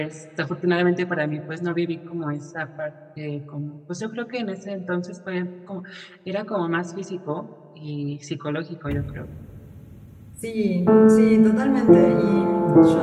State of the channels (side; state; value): both; identical; correlation 1.00